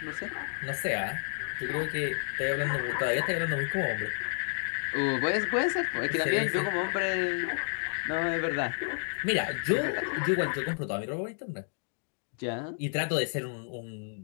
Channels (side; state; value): right; silent; 57 dB below the other